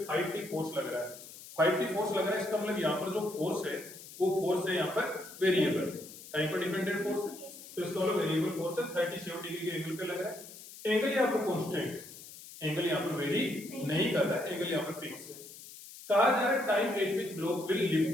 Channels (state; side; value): noise; left; hiss, 16 dB below the sound